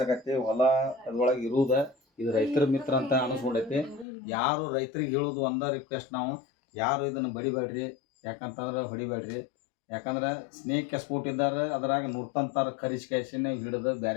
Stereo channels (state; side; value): drops out; right; at 4.0 s